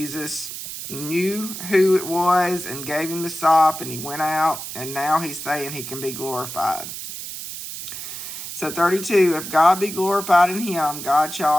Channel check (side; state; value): right; noise; hiss, 9 dB below the sound